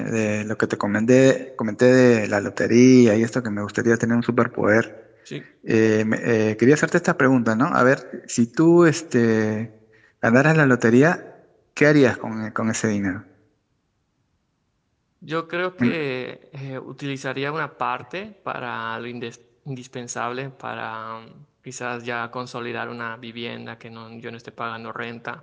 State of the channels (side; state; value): both; identical; correlation 1.00